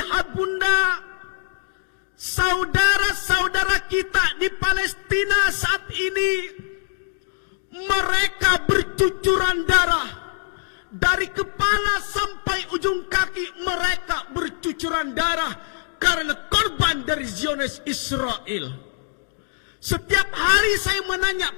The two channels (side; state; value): right; silent; digital silence